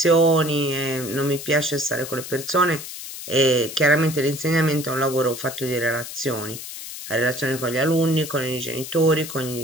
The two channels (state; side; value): noise; left; hiss, 10 dB below the sound